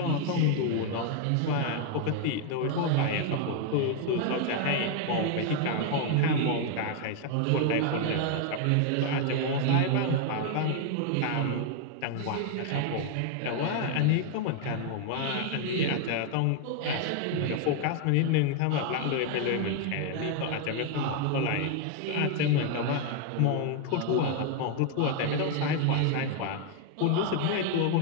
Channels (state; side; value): different; both; correlation 0.00